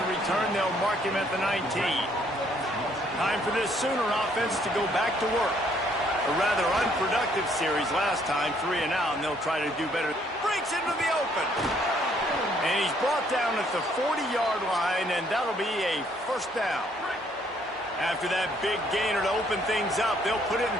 return. They'll mark him at the 19. Time for this Sooner offense to go back to work. A rather unproductive series last time, 3 and out, and they'll try to do better. Breaks into the open. And he's brought down at the 40-yard line, and that'll be a first down. After that big gainer to open things up, they'll put it in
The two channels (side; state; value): both; normal; correlation 0.66